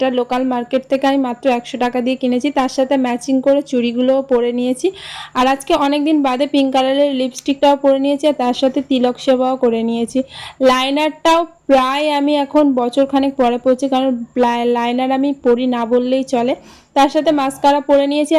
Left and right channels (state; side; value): identical; both; correlation 1.00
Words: লোকাল মার্কেট থেকে আমি মাত্র 100 টাকা দিয়ে কিনেছি। তার সাথে ম্যাচিং করে চুড়িগুলোও পরে নিয়েছি। আর আজকে অনেকদিন বাদে পিঙ্ক কালারের লিপস্টিকটাও পরে নিয়েছি, আর তার সাথে তিলক সেবাও করে নিয়েছি। লাইনারটাও প্রায় আমি এখন বছরখানেক পরে পড়ছি, কারণ লাইনার আমি পরি না বললেই চলে। তার সাথে মাস্কারা পরে নিয়েছি,